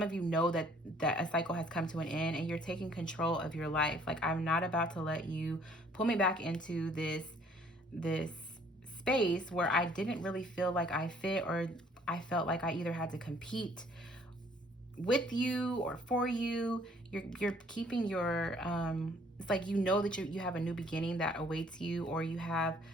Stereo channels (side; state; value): both; normal; correlation 0.60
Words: of you know that a cycle has come to an end and you're taking control of your life. Like, I'm not about to let you pull me back into this space where I didn't really feel like I fit, or I felt like I either had to compete with you or for you. You're keeping your it's like, you know that you have a new beginning that awaits you, or you have